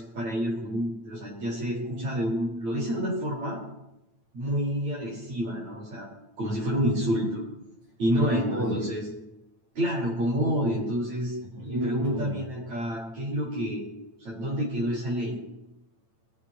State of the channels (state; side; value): late; left; 8.9 ms